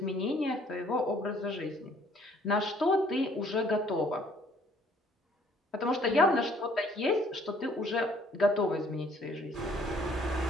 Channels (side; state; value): both; normal; correlation 0.60